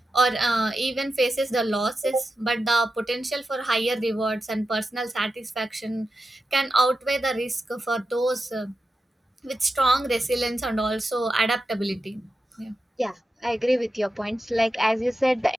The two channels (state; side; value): normal; both; correlation 0.90